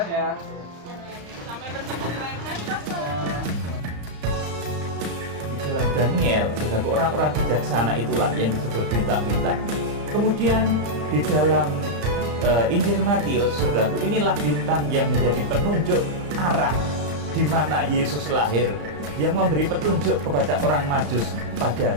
ya. Sampai bertemu di lain hari, Pastor. Di dalam Daniel, saudaraku, orang-orang bijaksana itulah yang disebut bintang-bintang. Kemudian di dalam Injil Matius, saudaraku, inilah bintang yang menjadi penunjuk arah di mana Yesus lahir, yang memberi petunjuk kepada orang Majus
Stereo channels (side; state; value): left; late; 35 ms